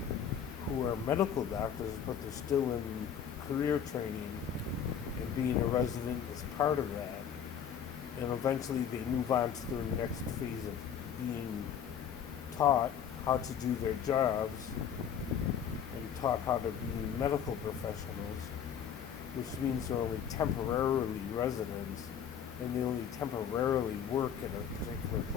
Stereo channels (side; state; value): right; quieter; 8.3 dB